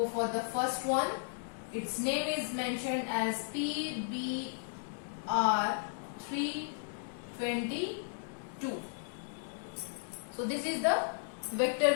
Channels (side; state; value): right; silent; digital silence